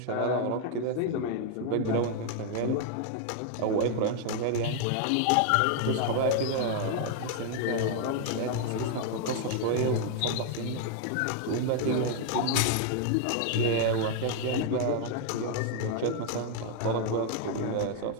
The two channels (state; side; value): different; both; correlation 0.00